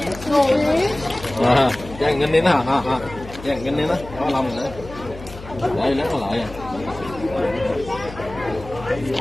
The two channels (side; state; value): left; noise; hum, 14 dB below the sound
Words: Dàn ngân đi nó hả? Dàn ngân đi nó, có lòng nữa. Đây lấy nó lại.